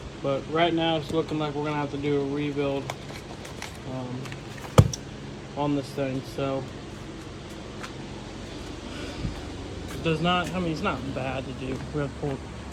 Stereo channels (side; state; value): both; identical; correlation 1.00